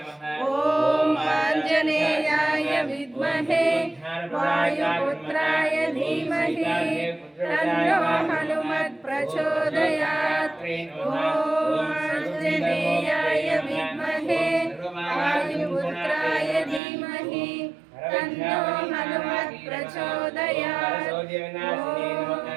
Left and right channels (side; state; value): left; drops out; at 16.8 s